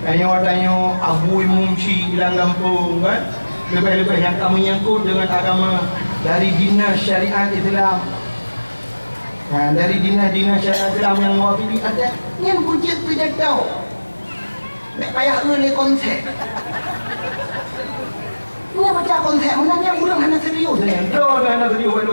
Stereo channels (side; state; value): both; inverted; correlation -1.00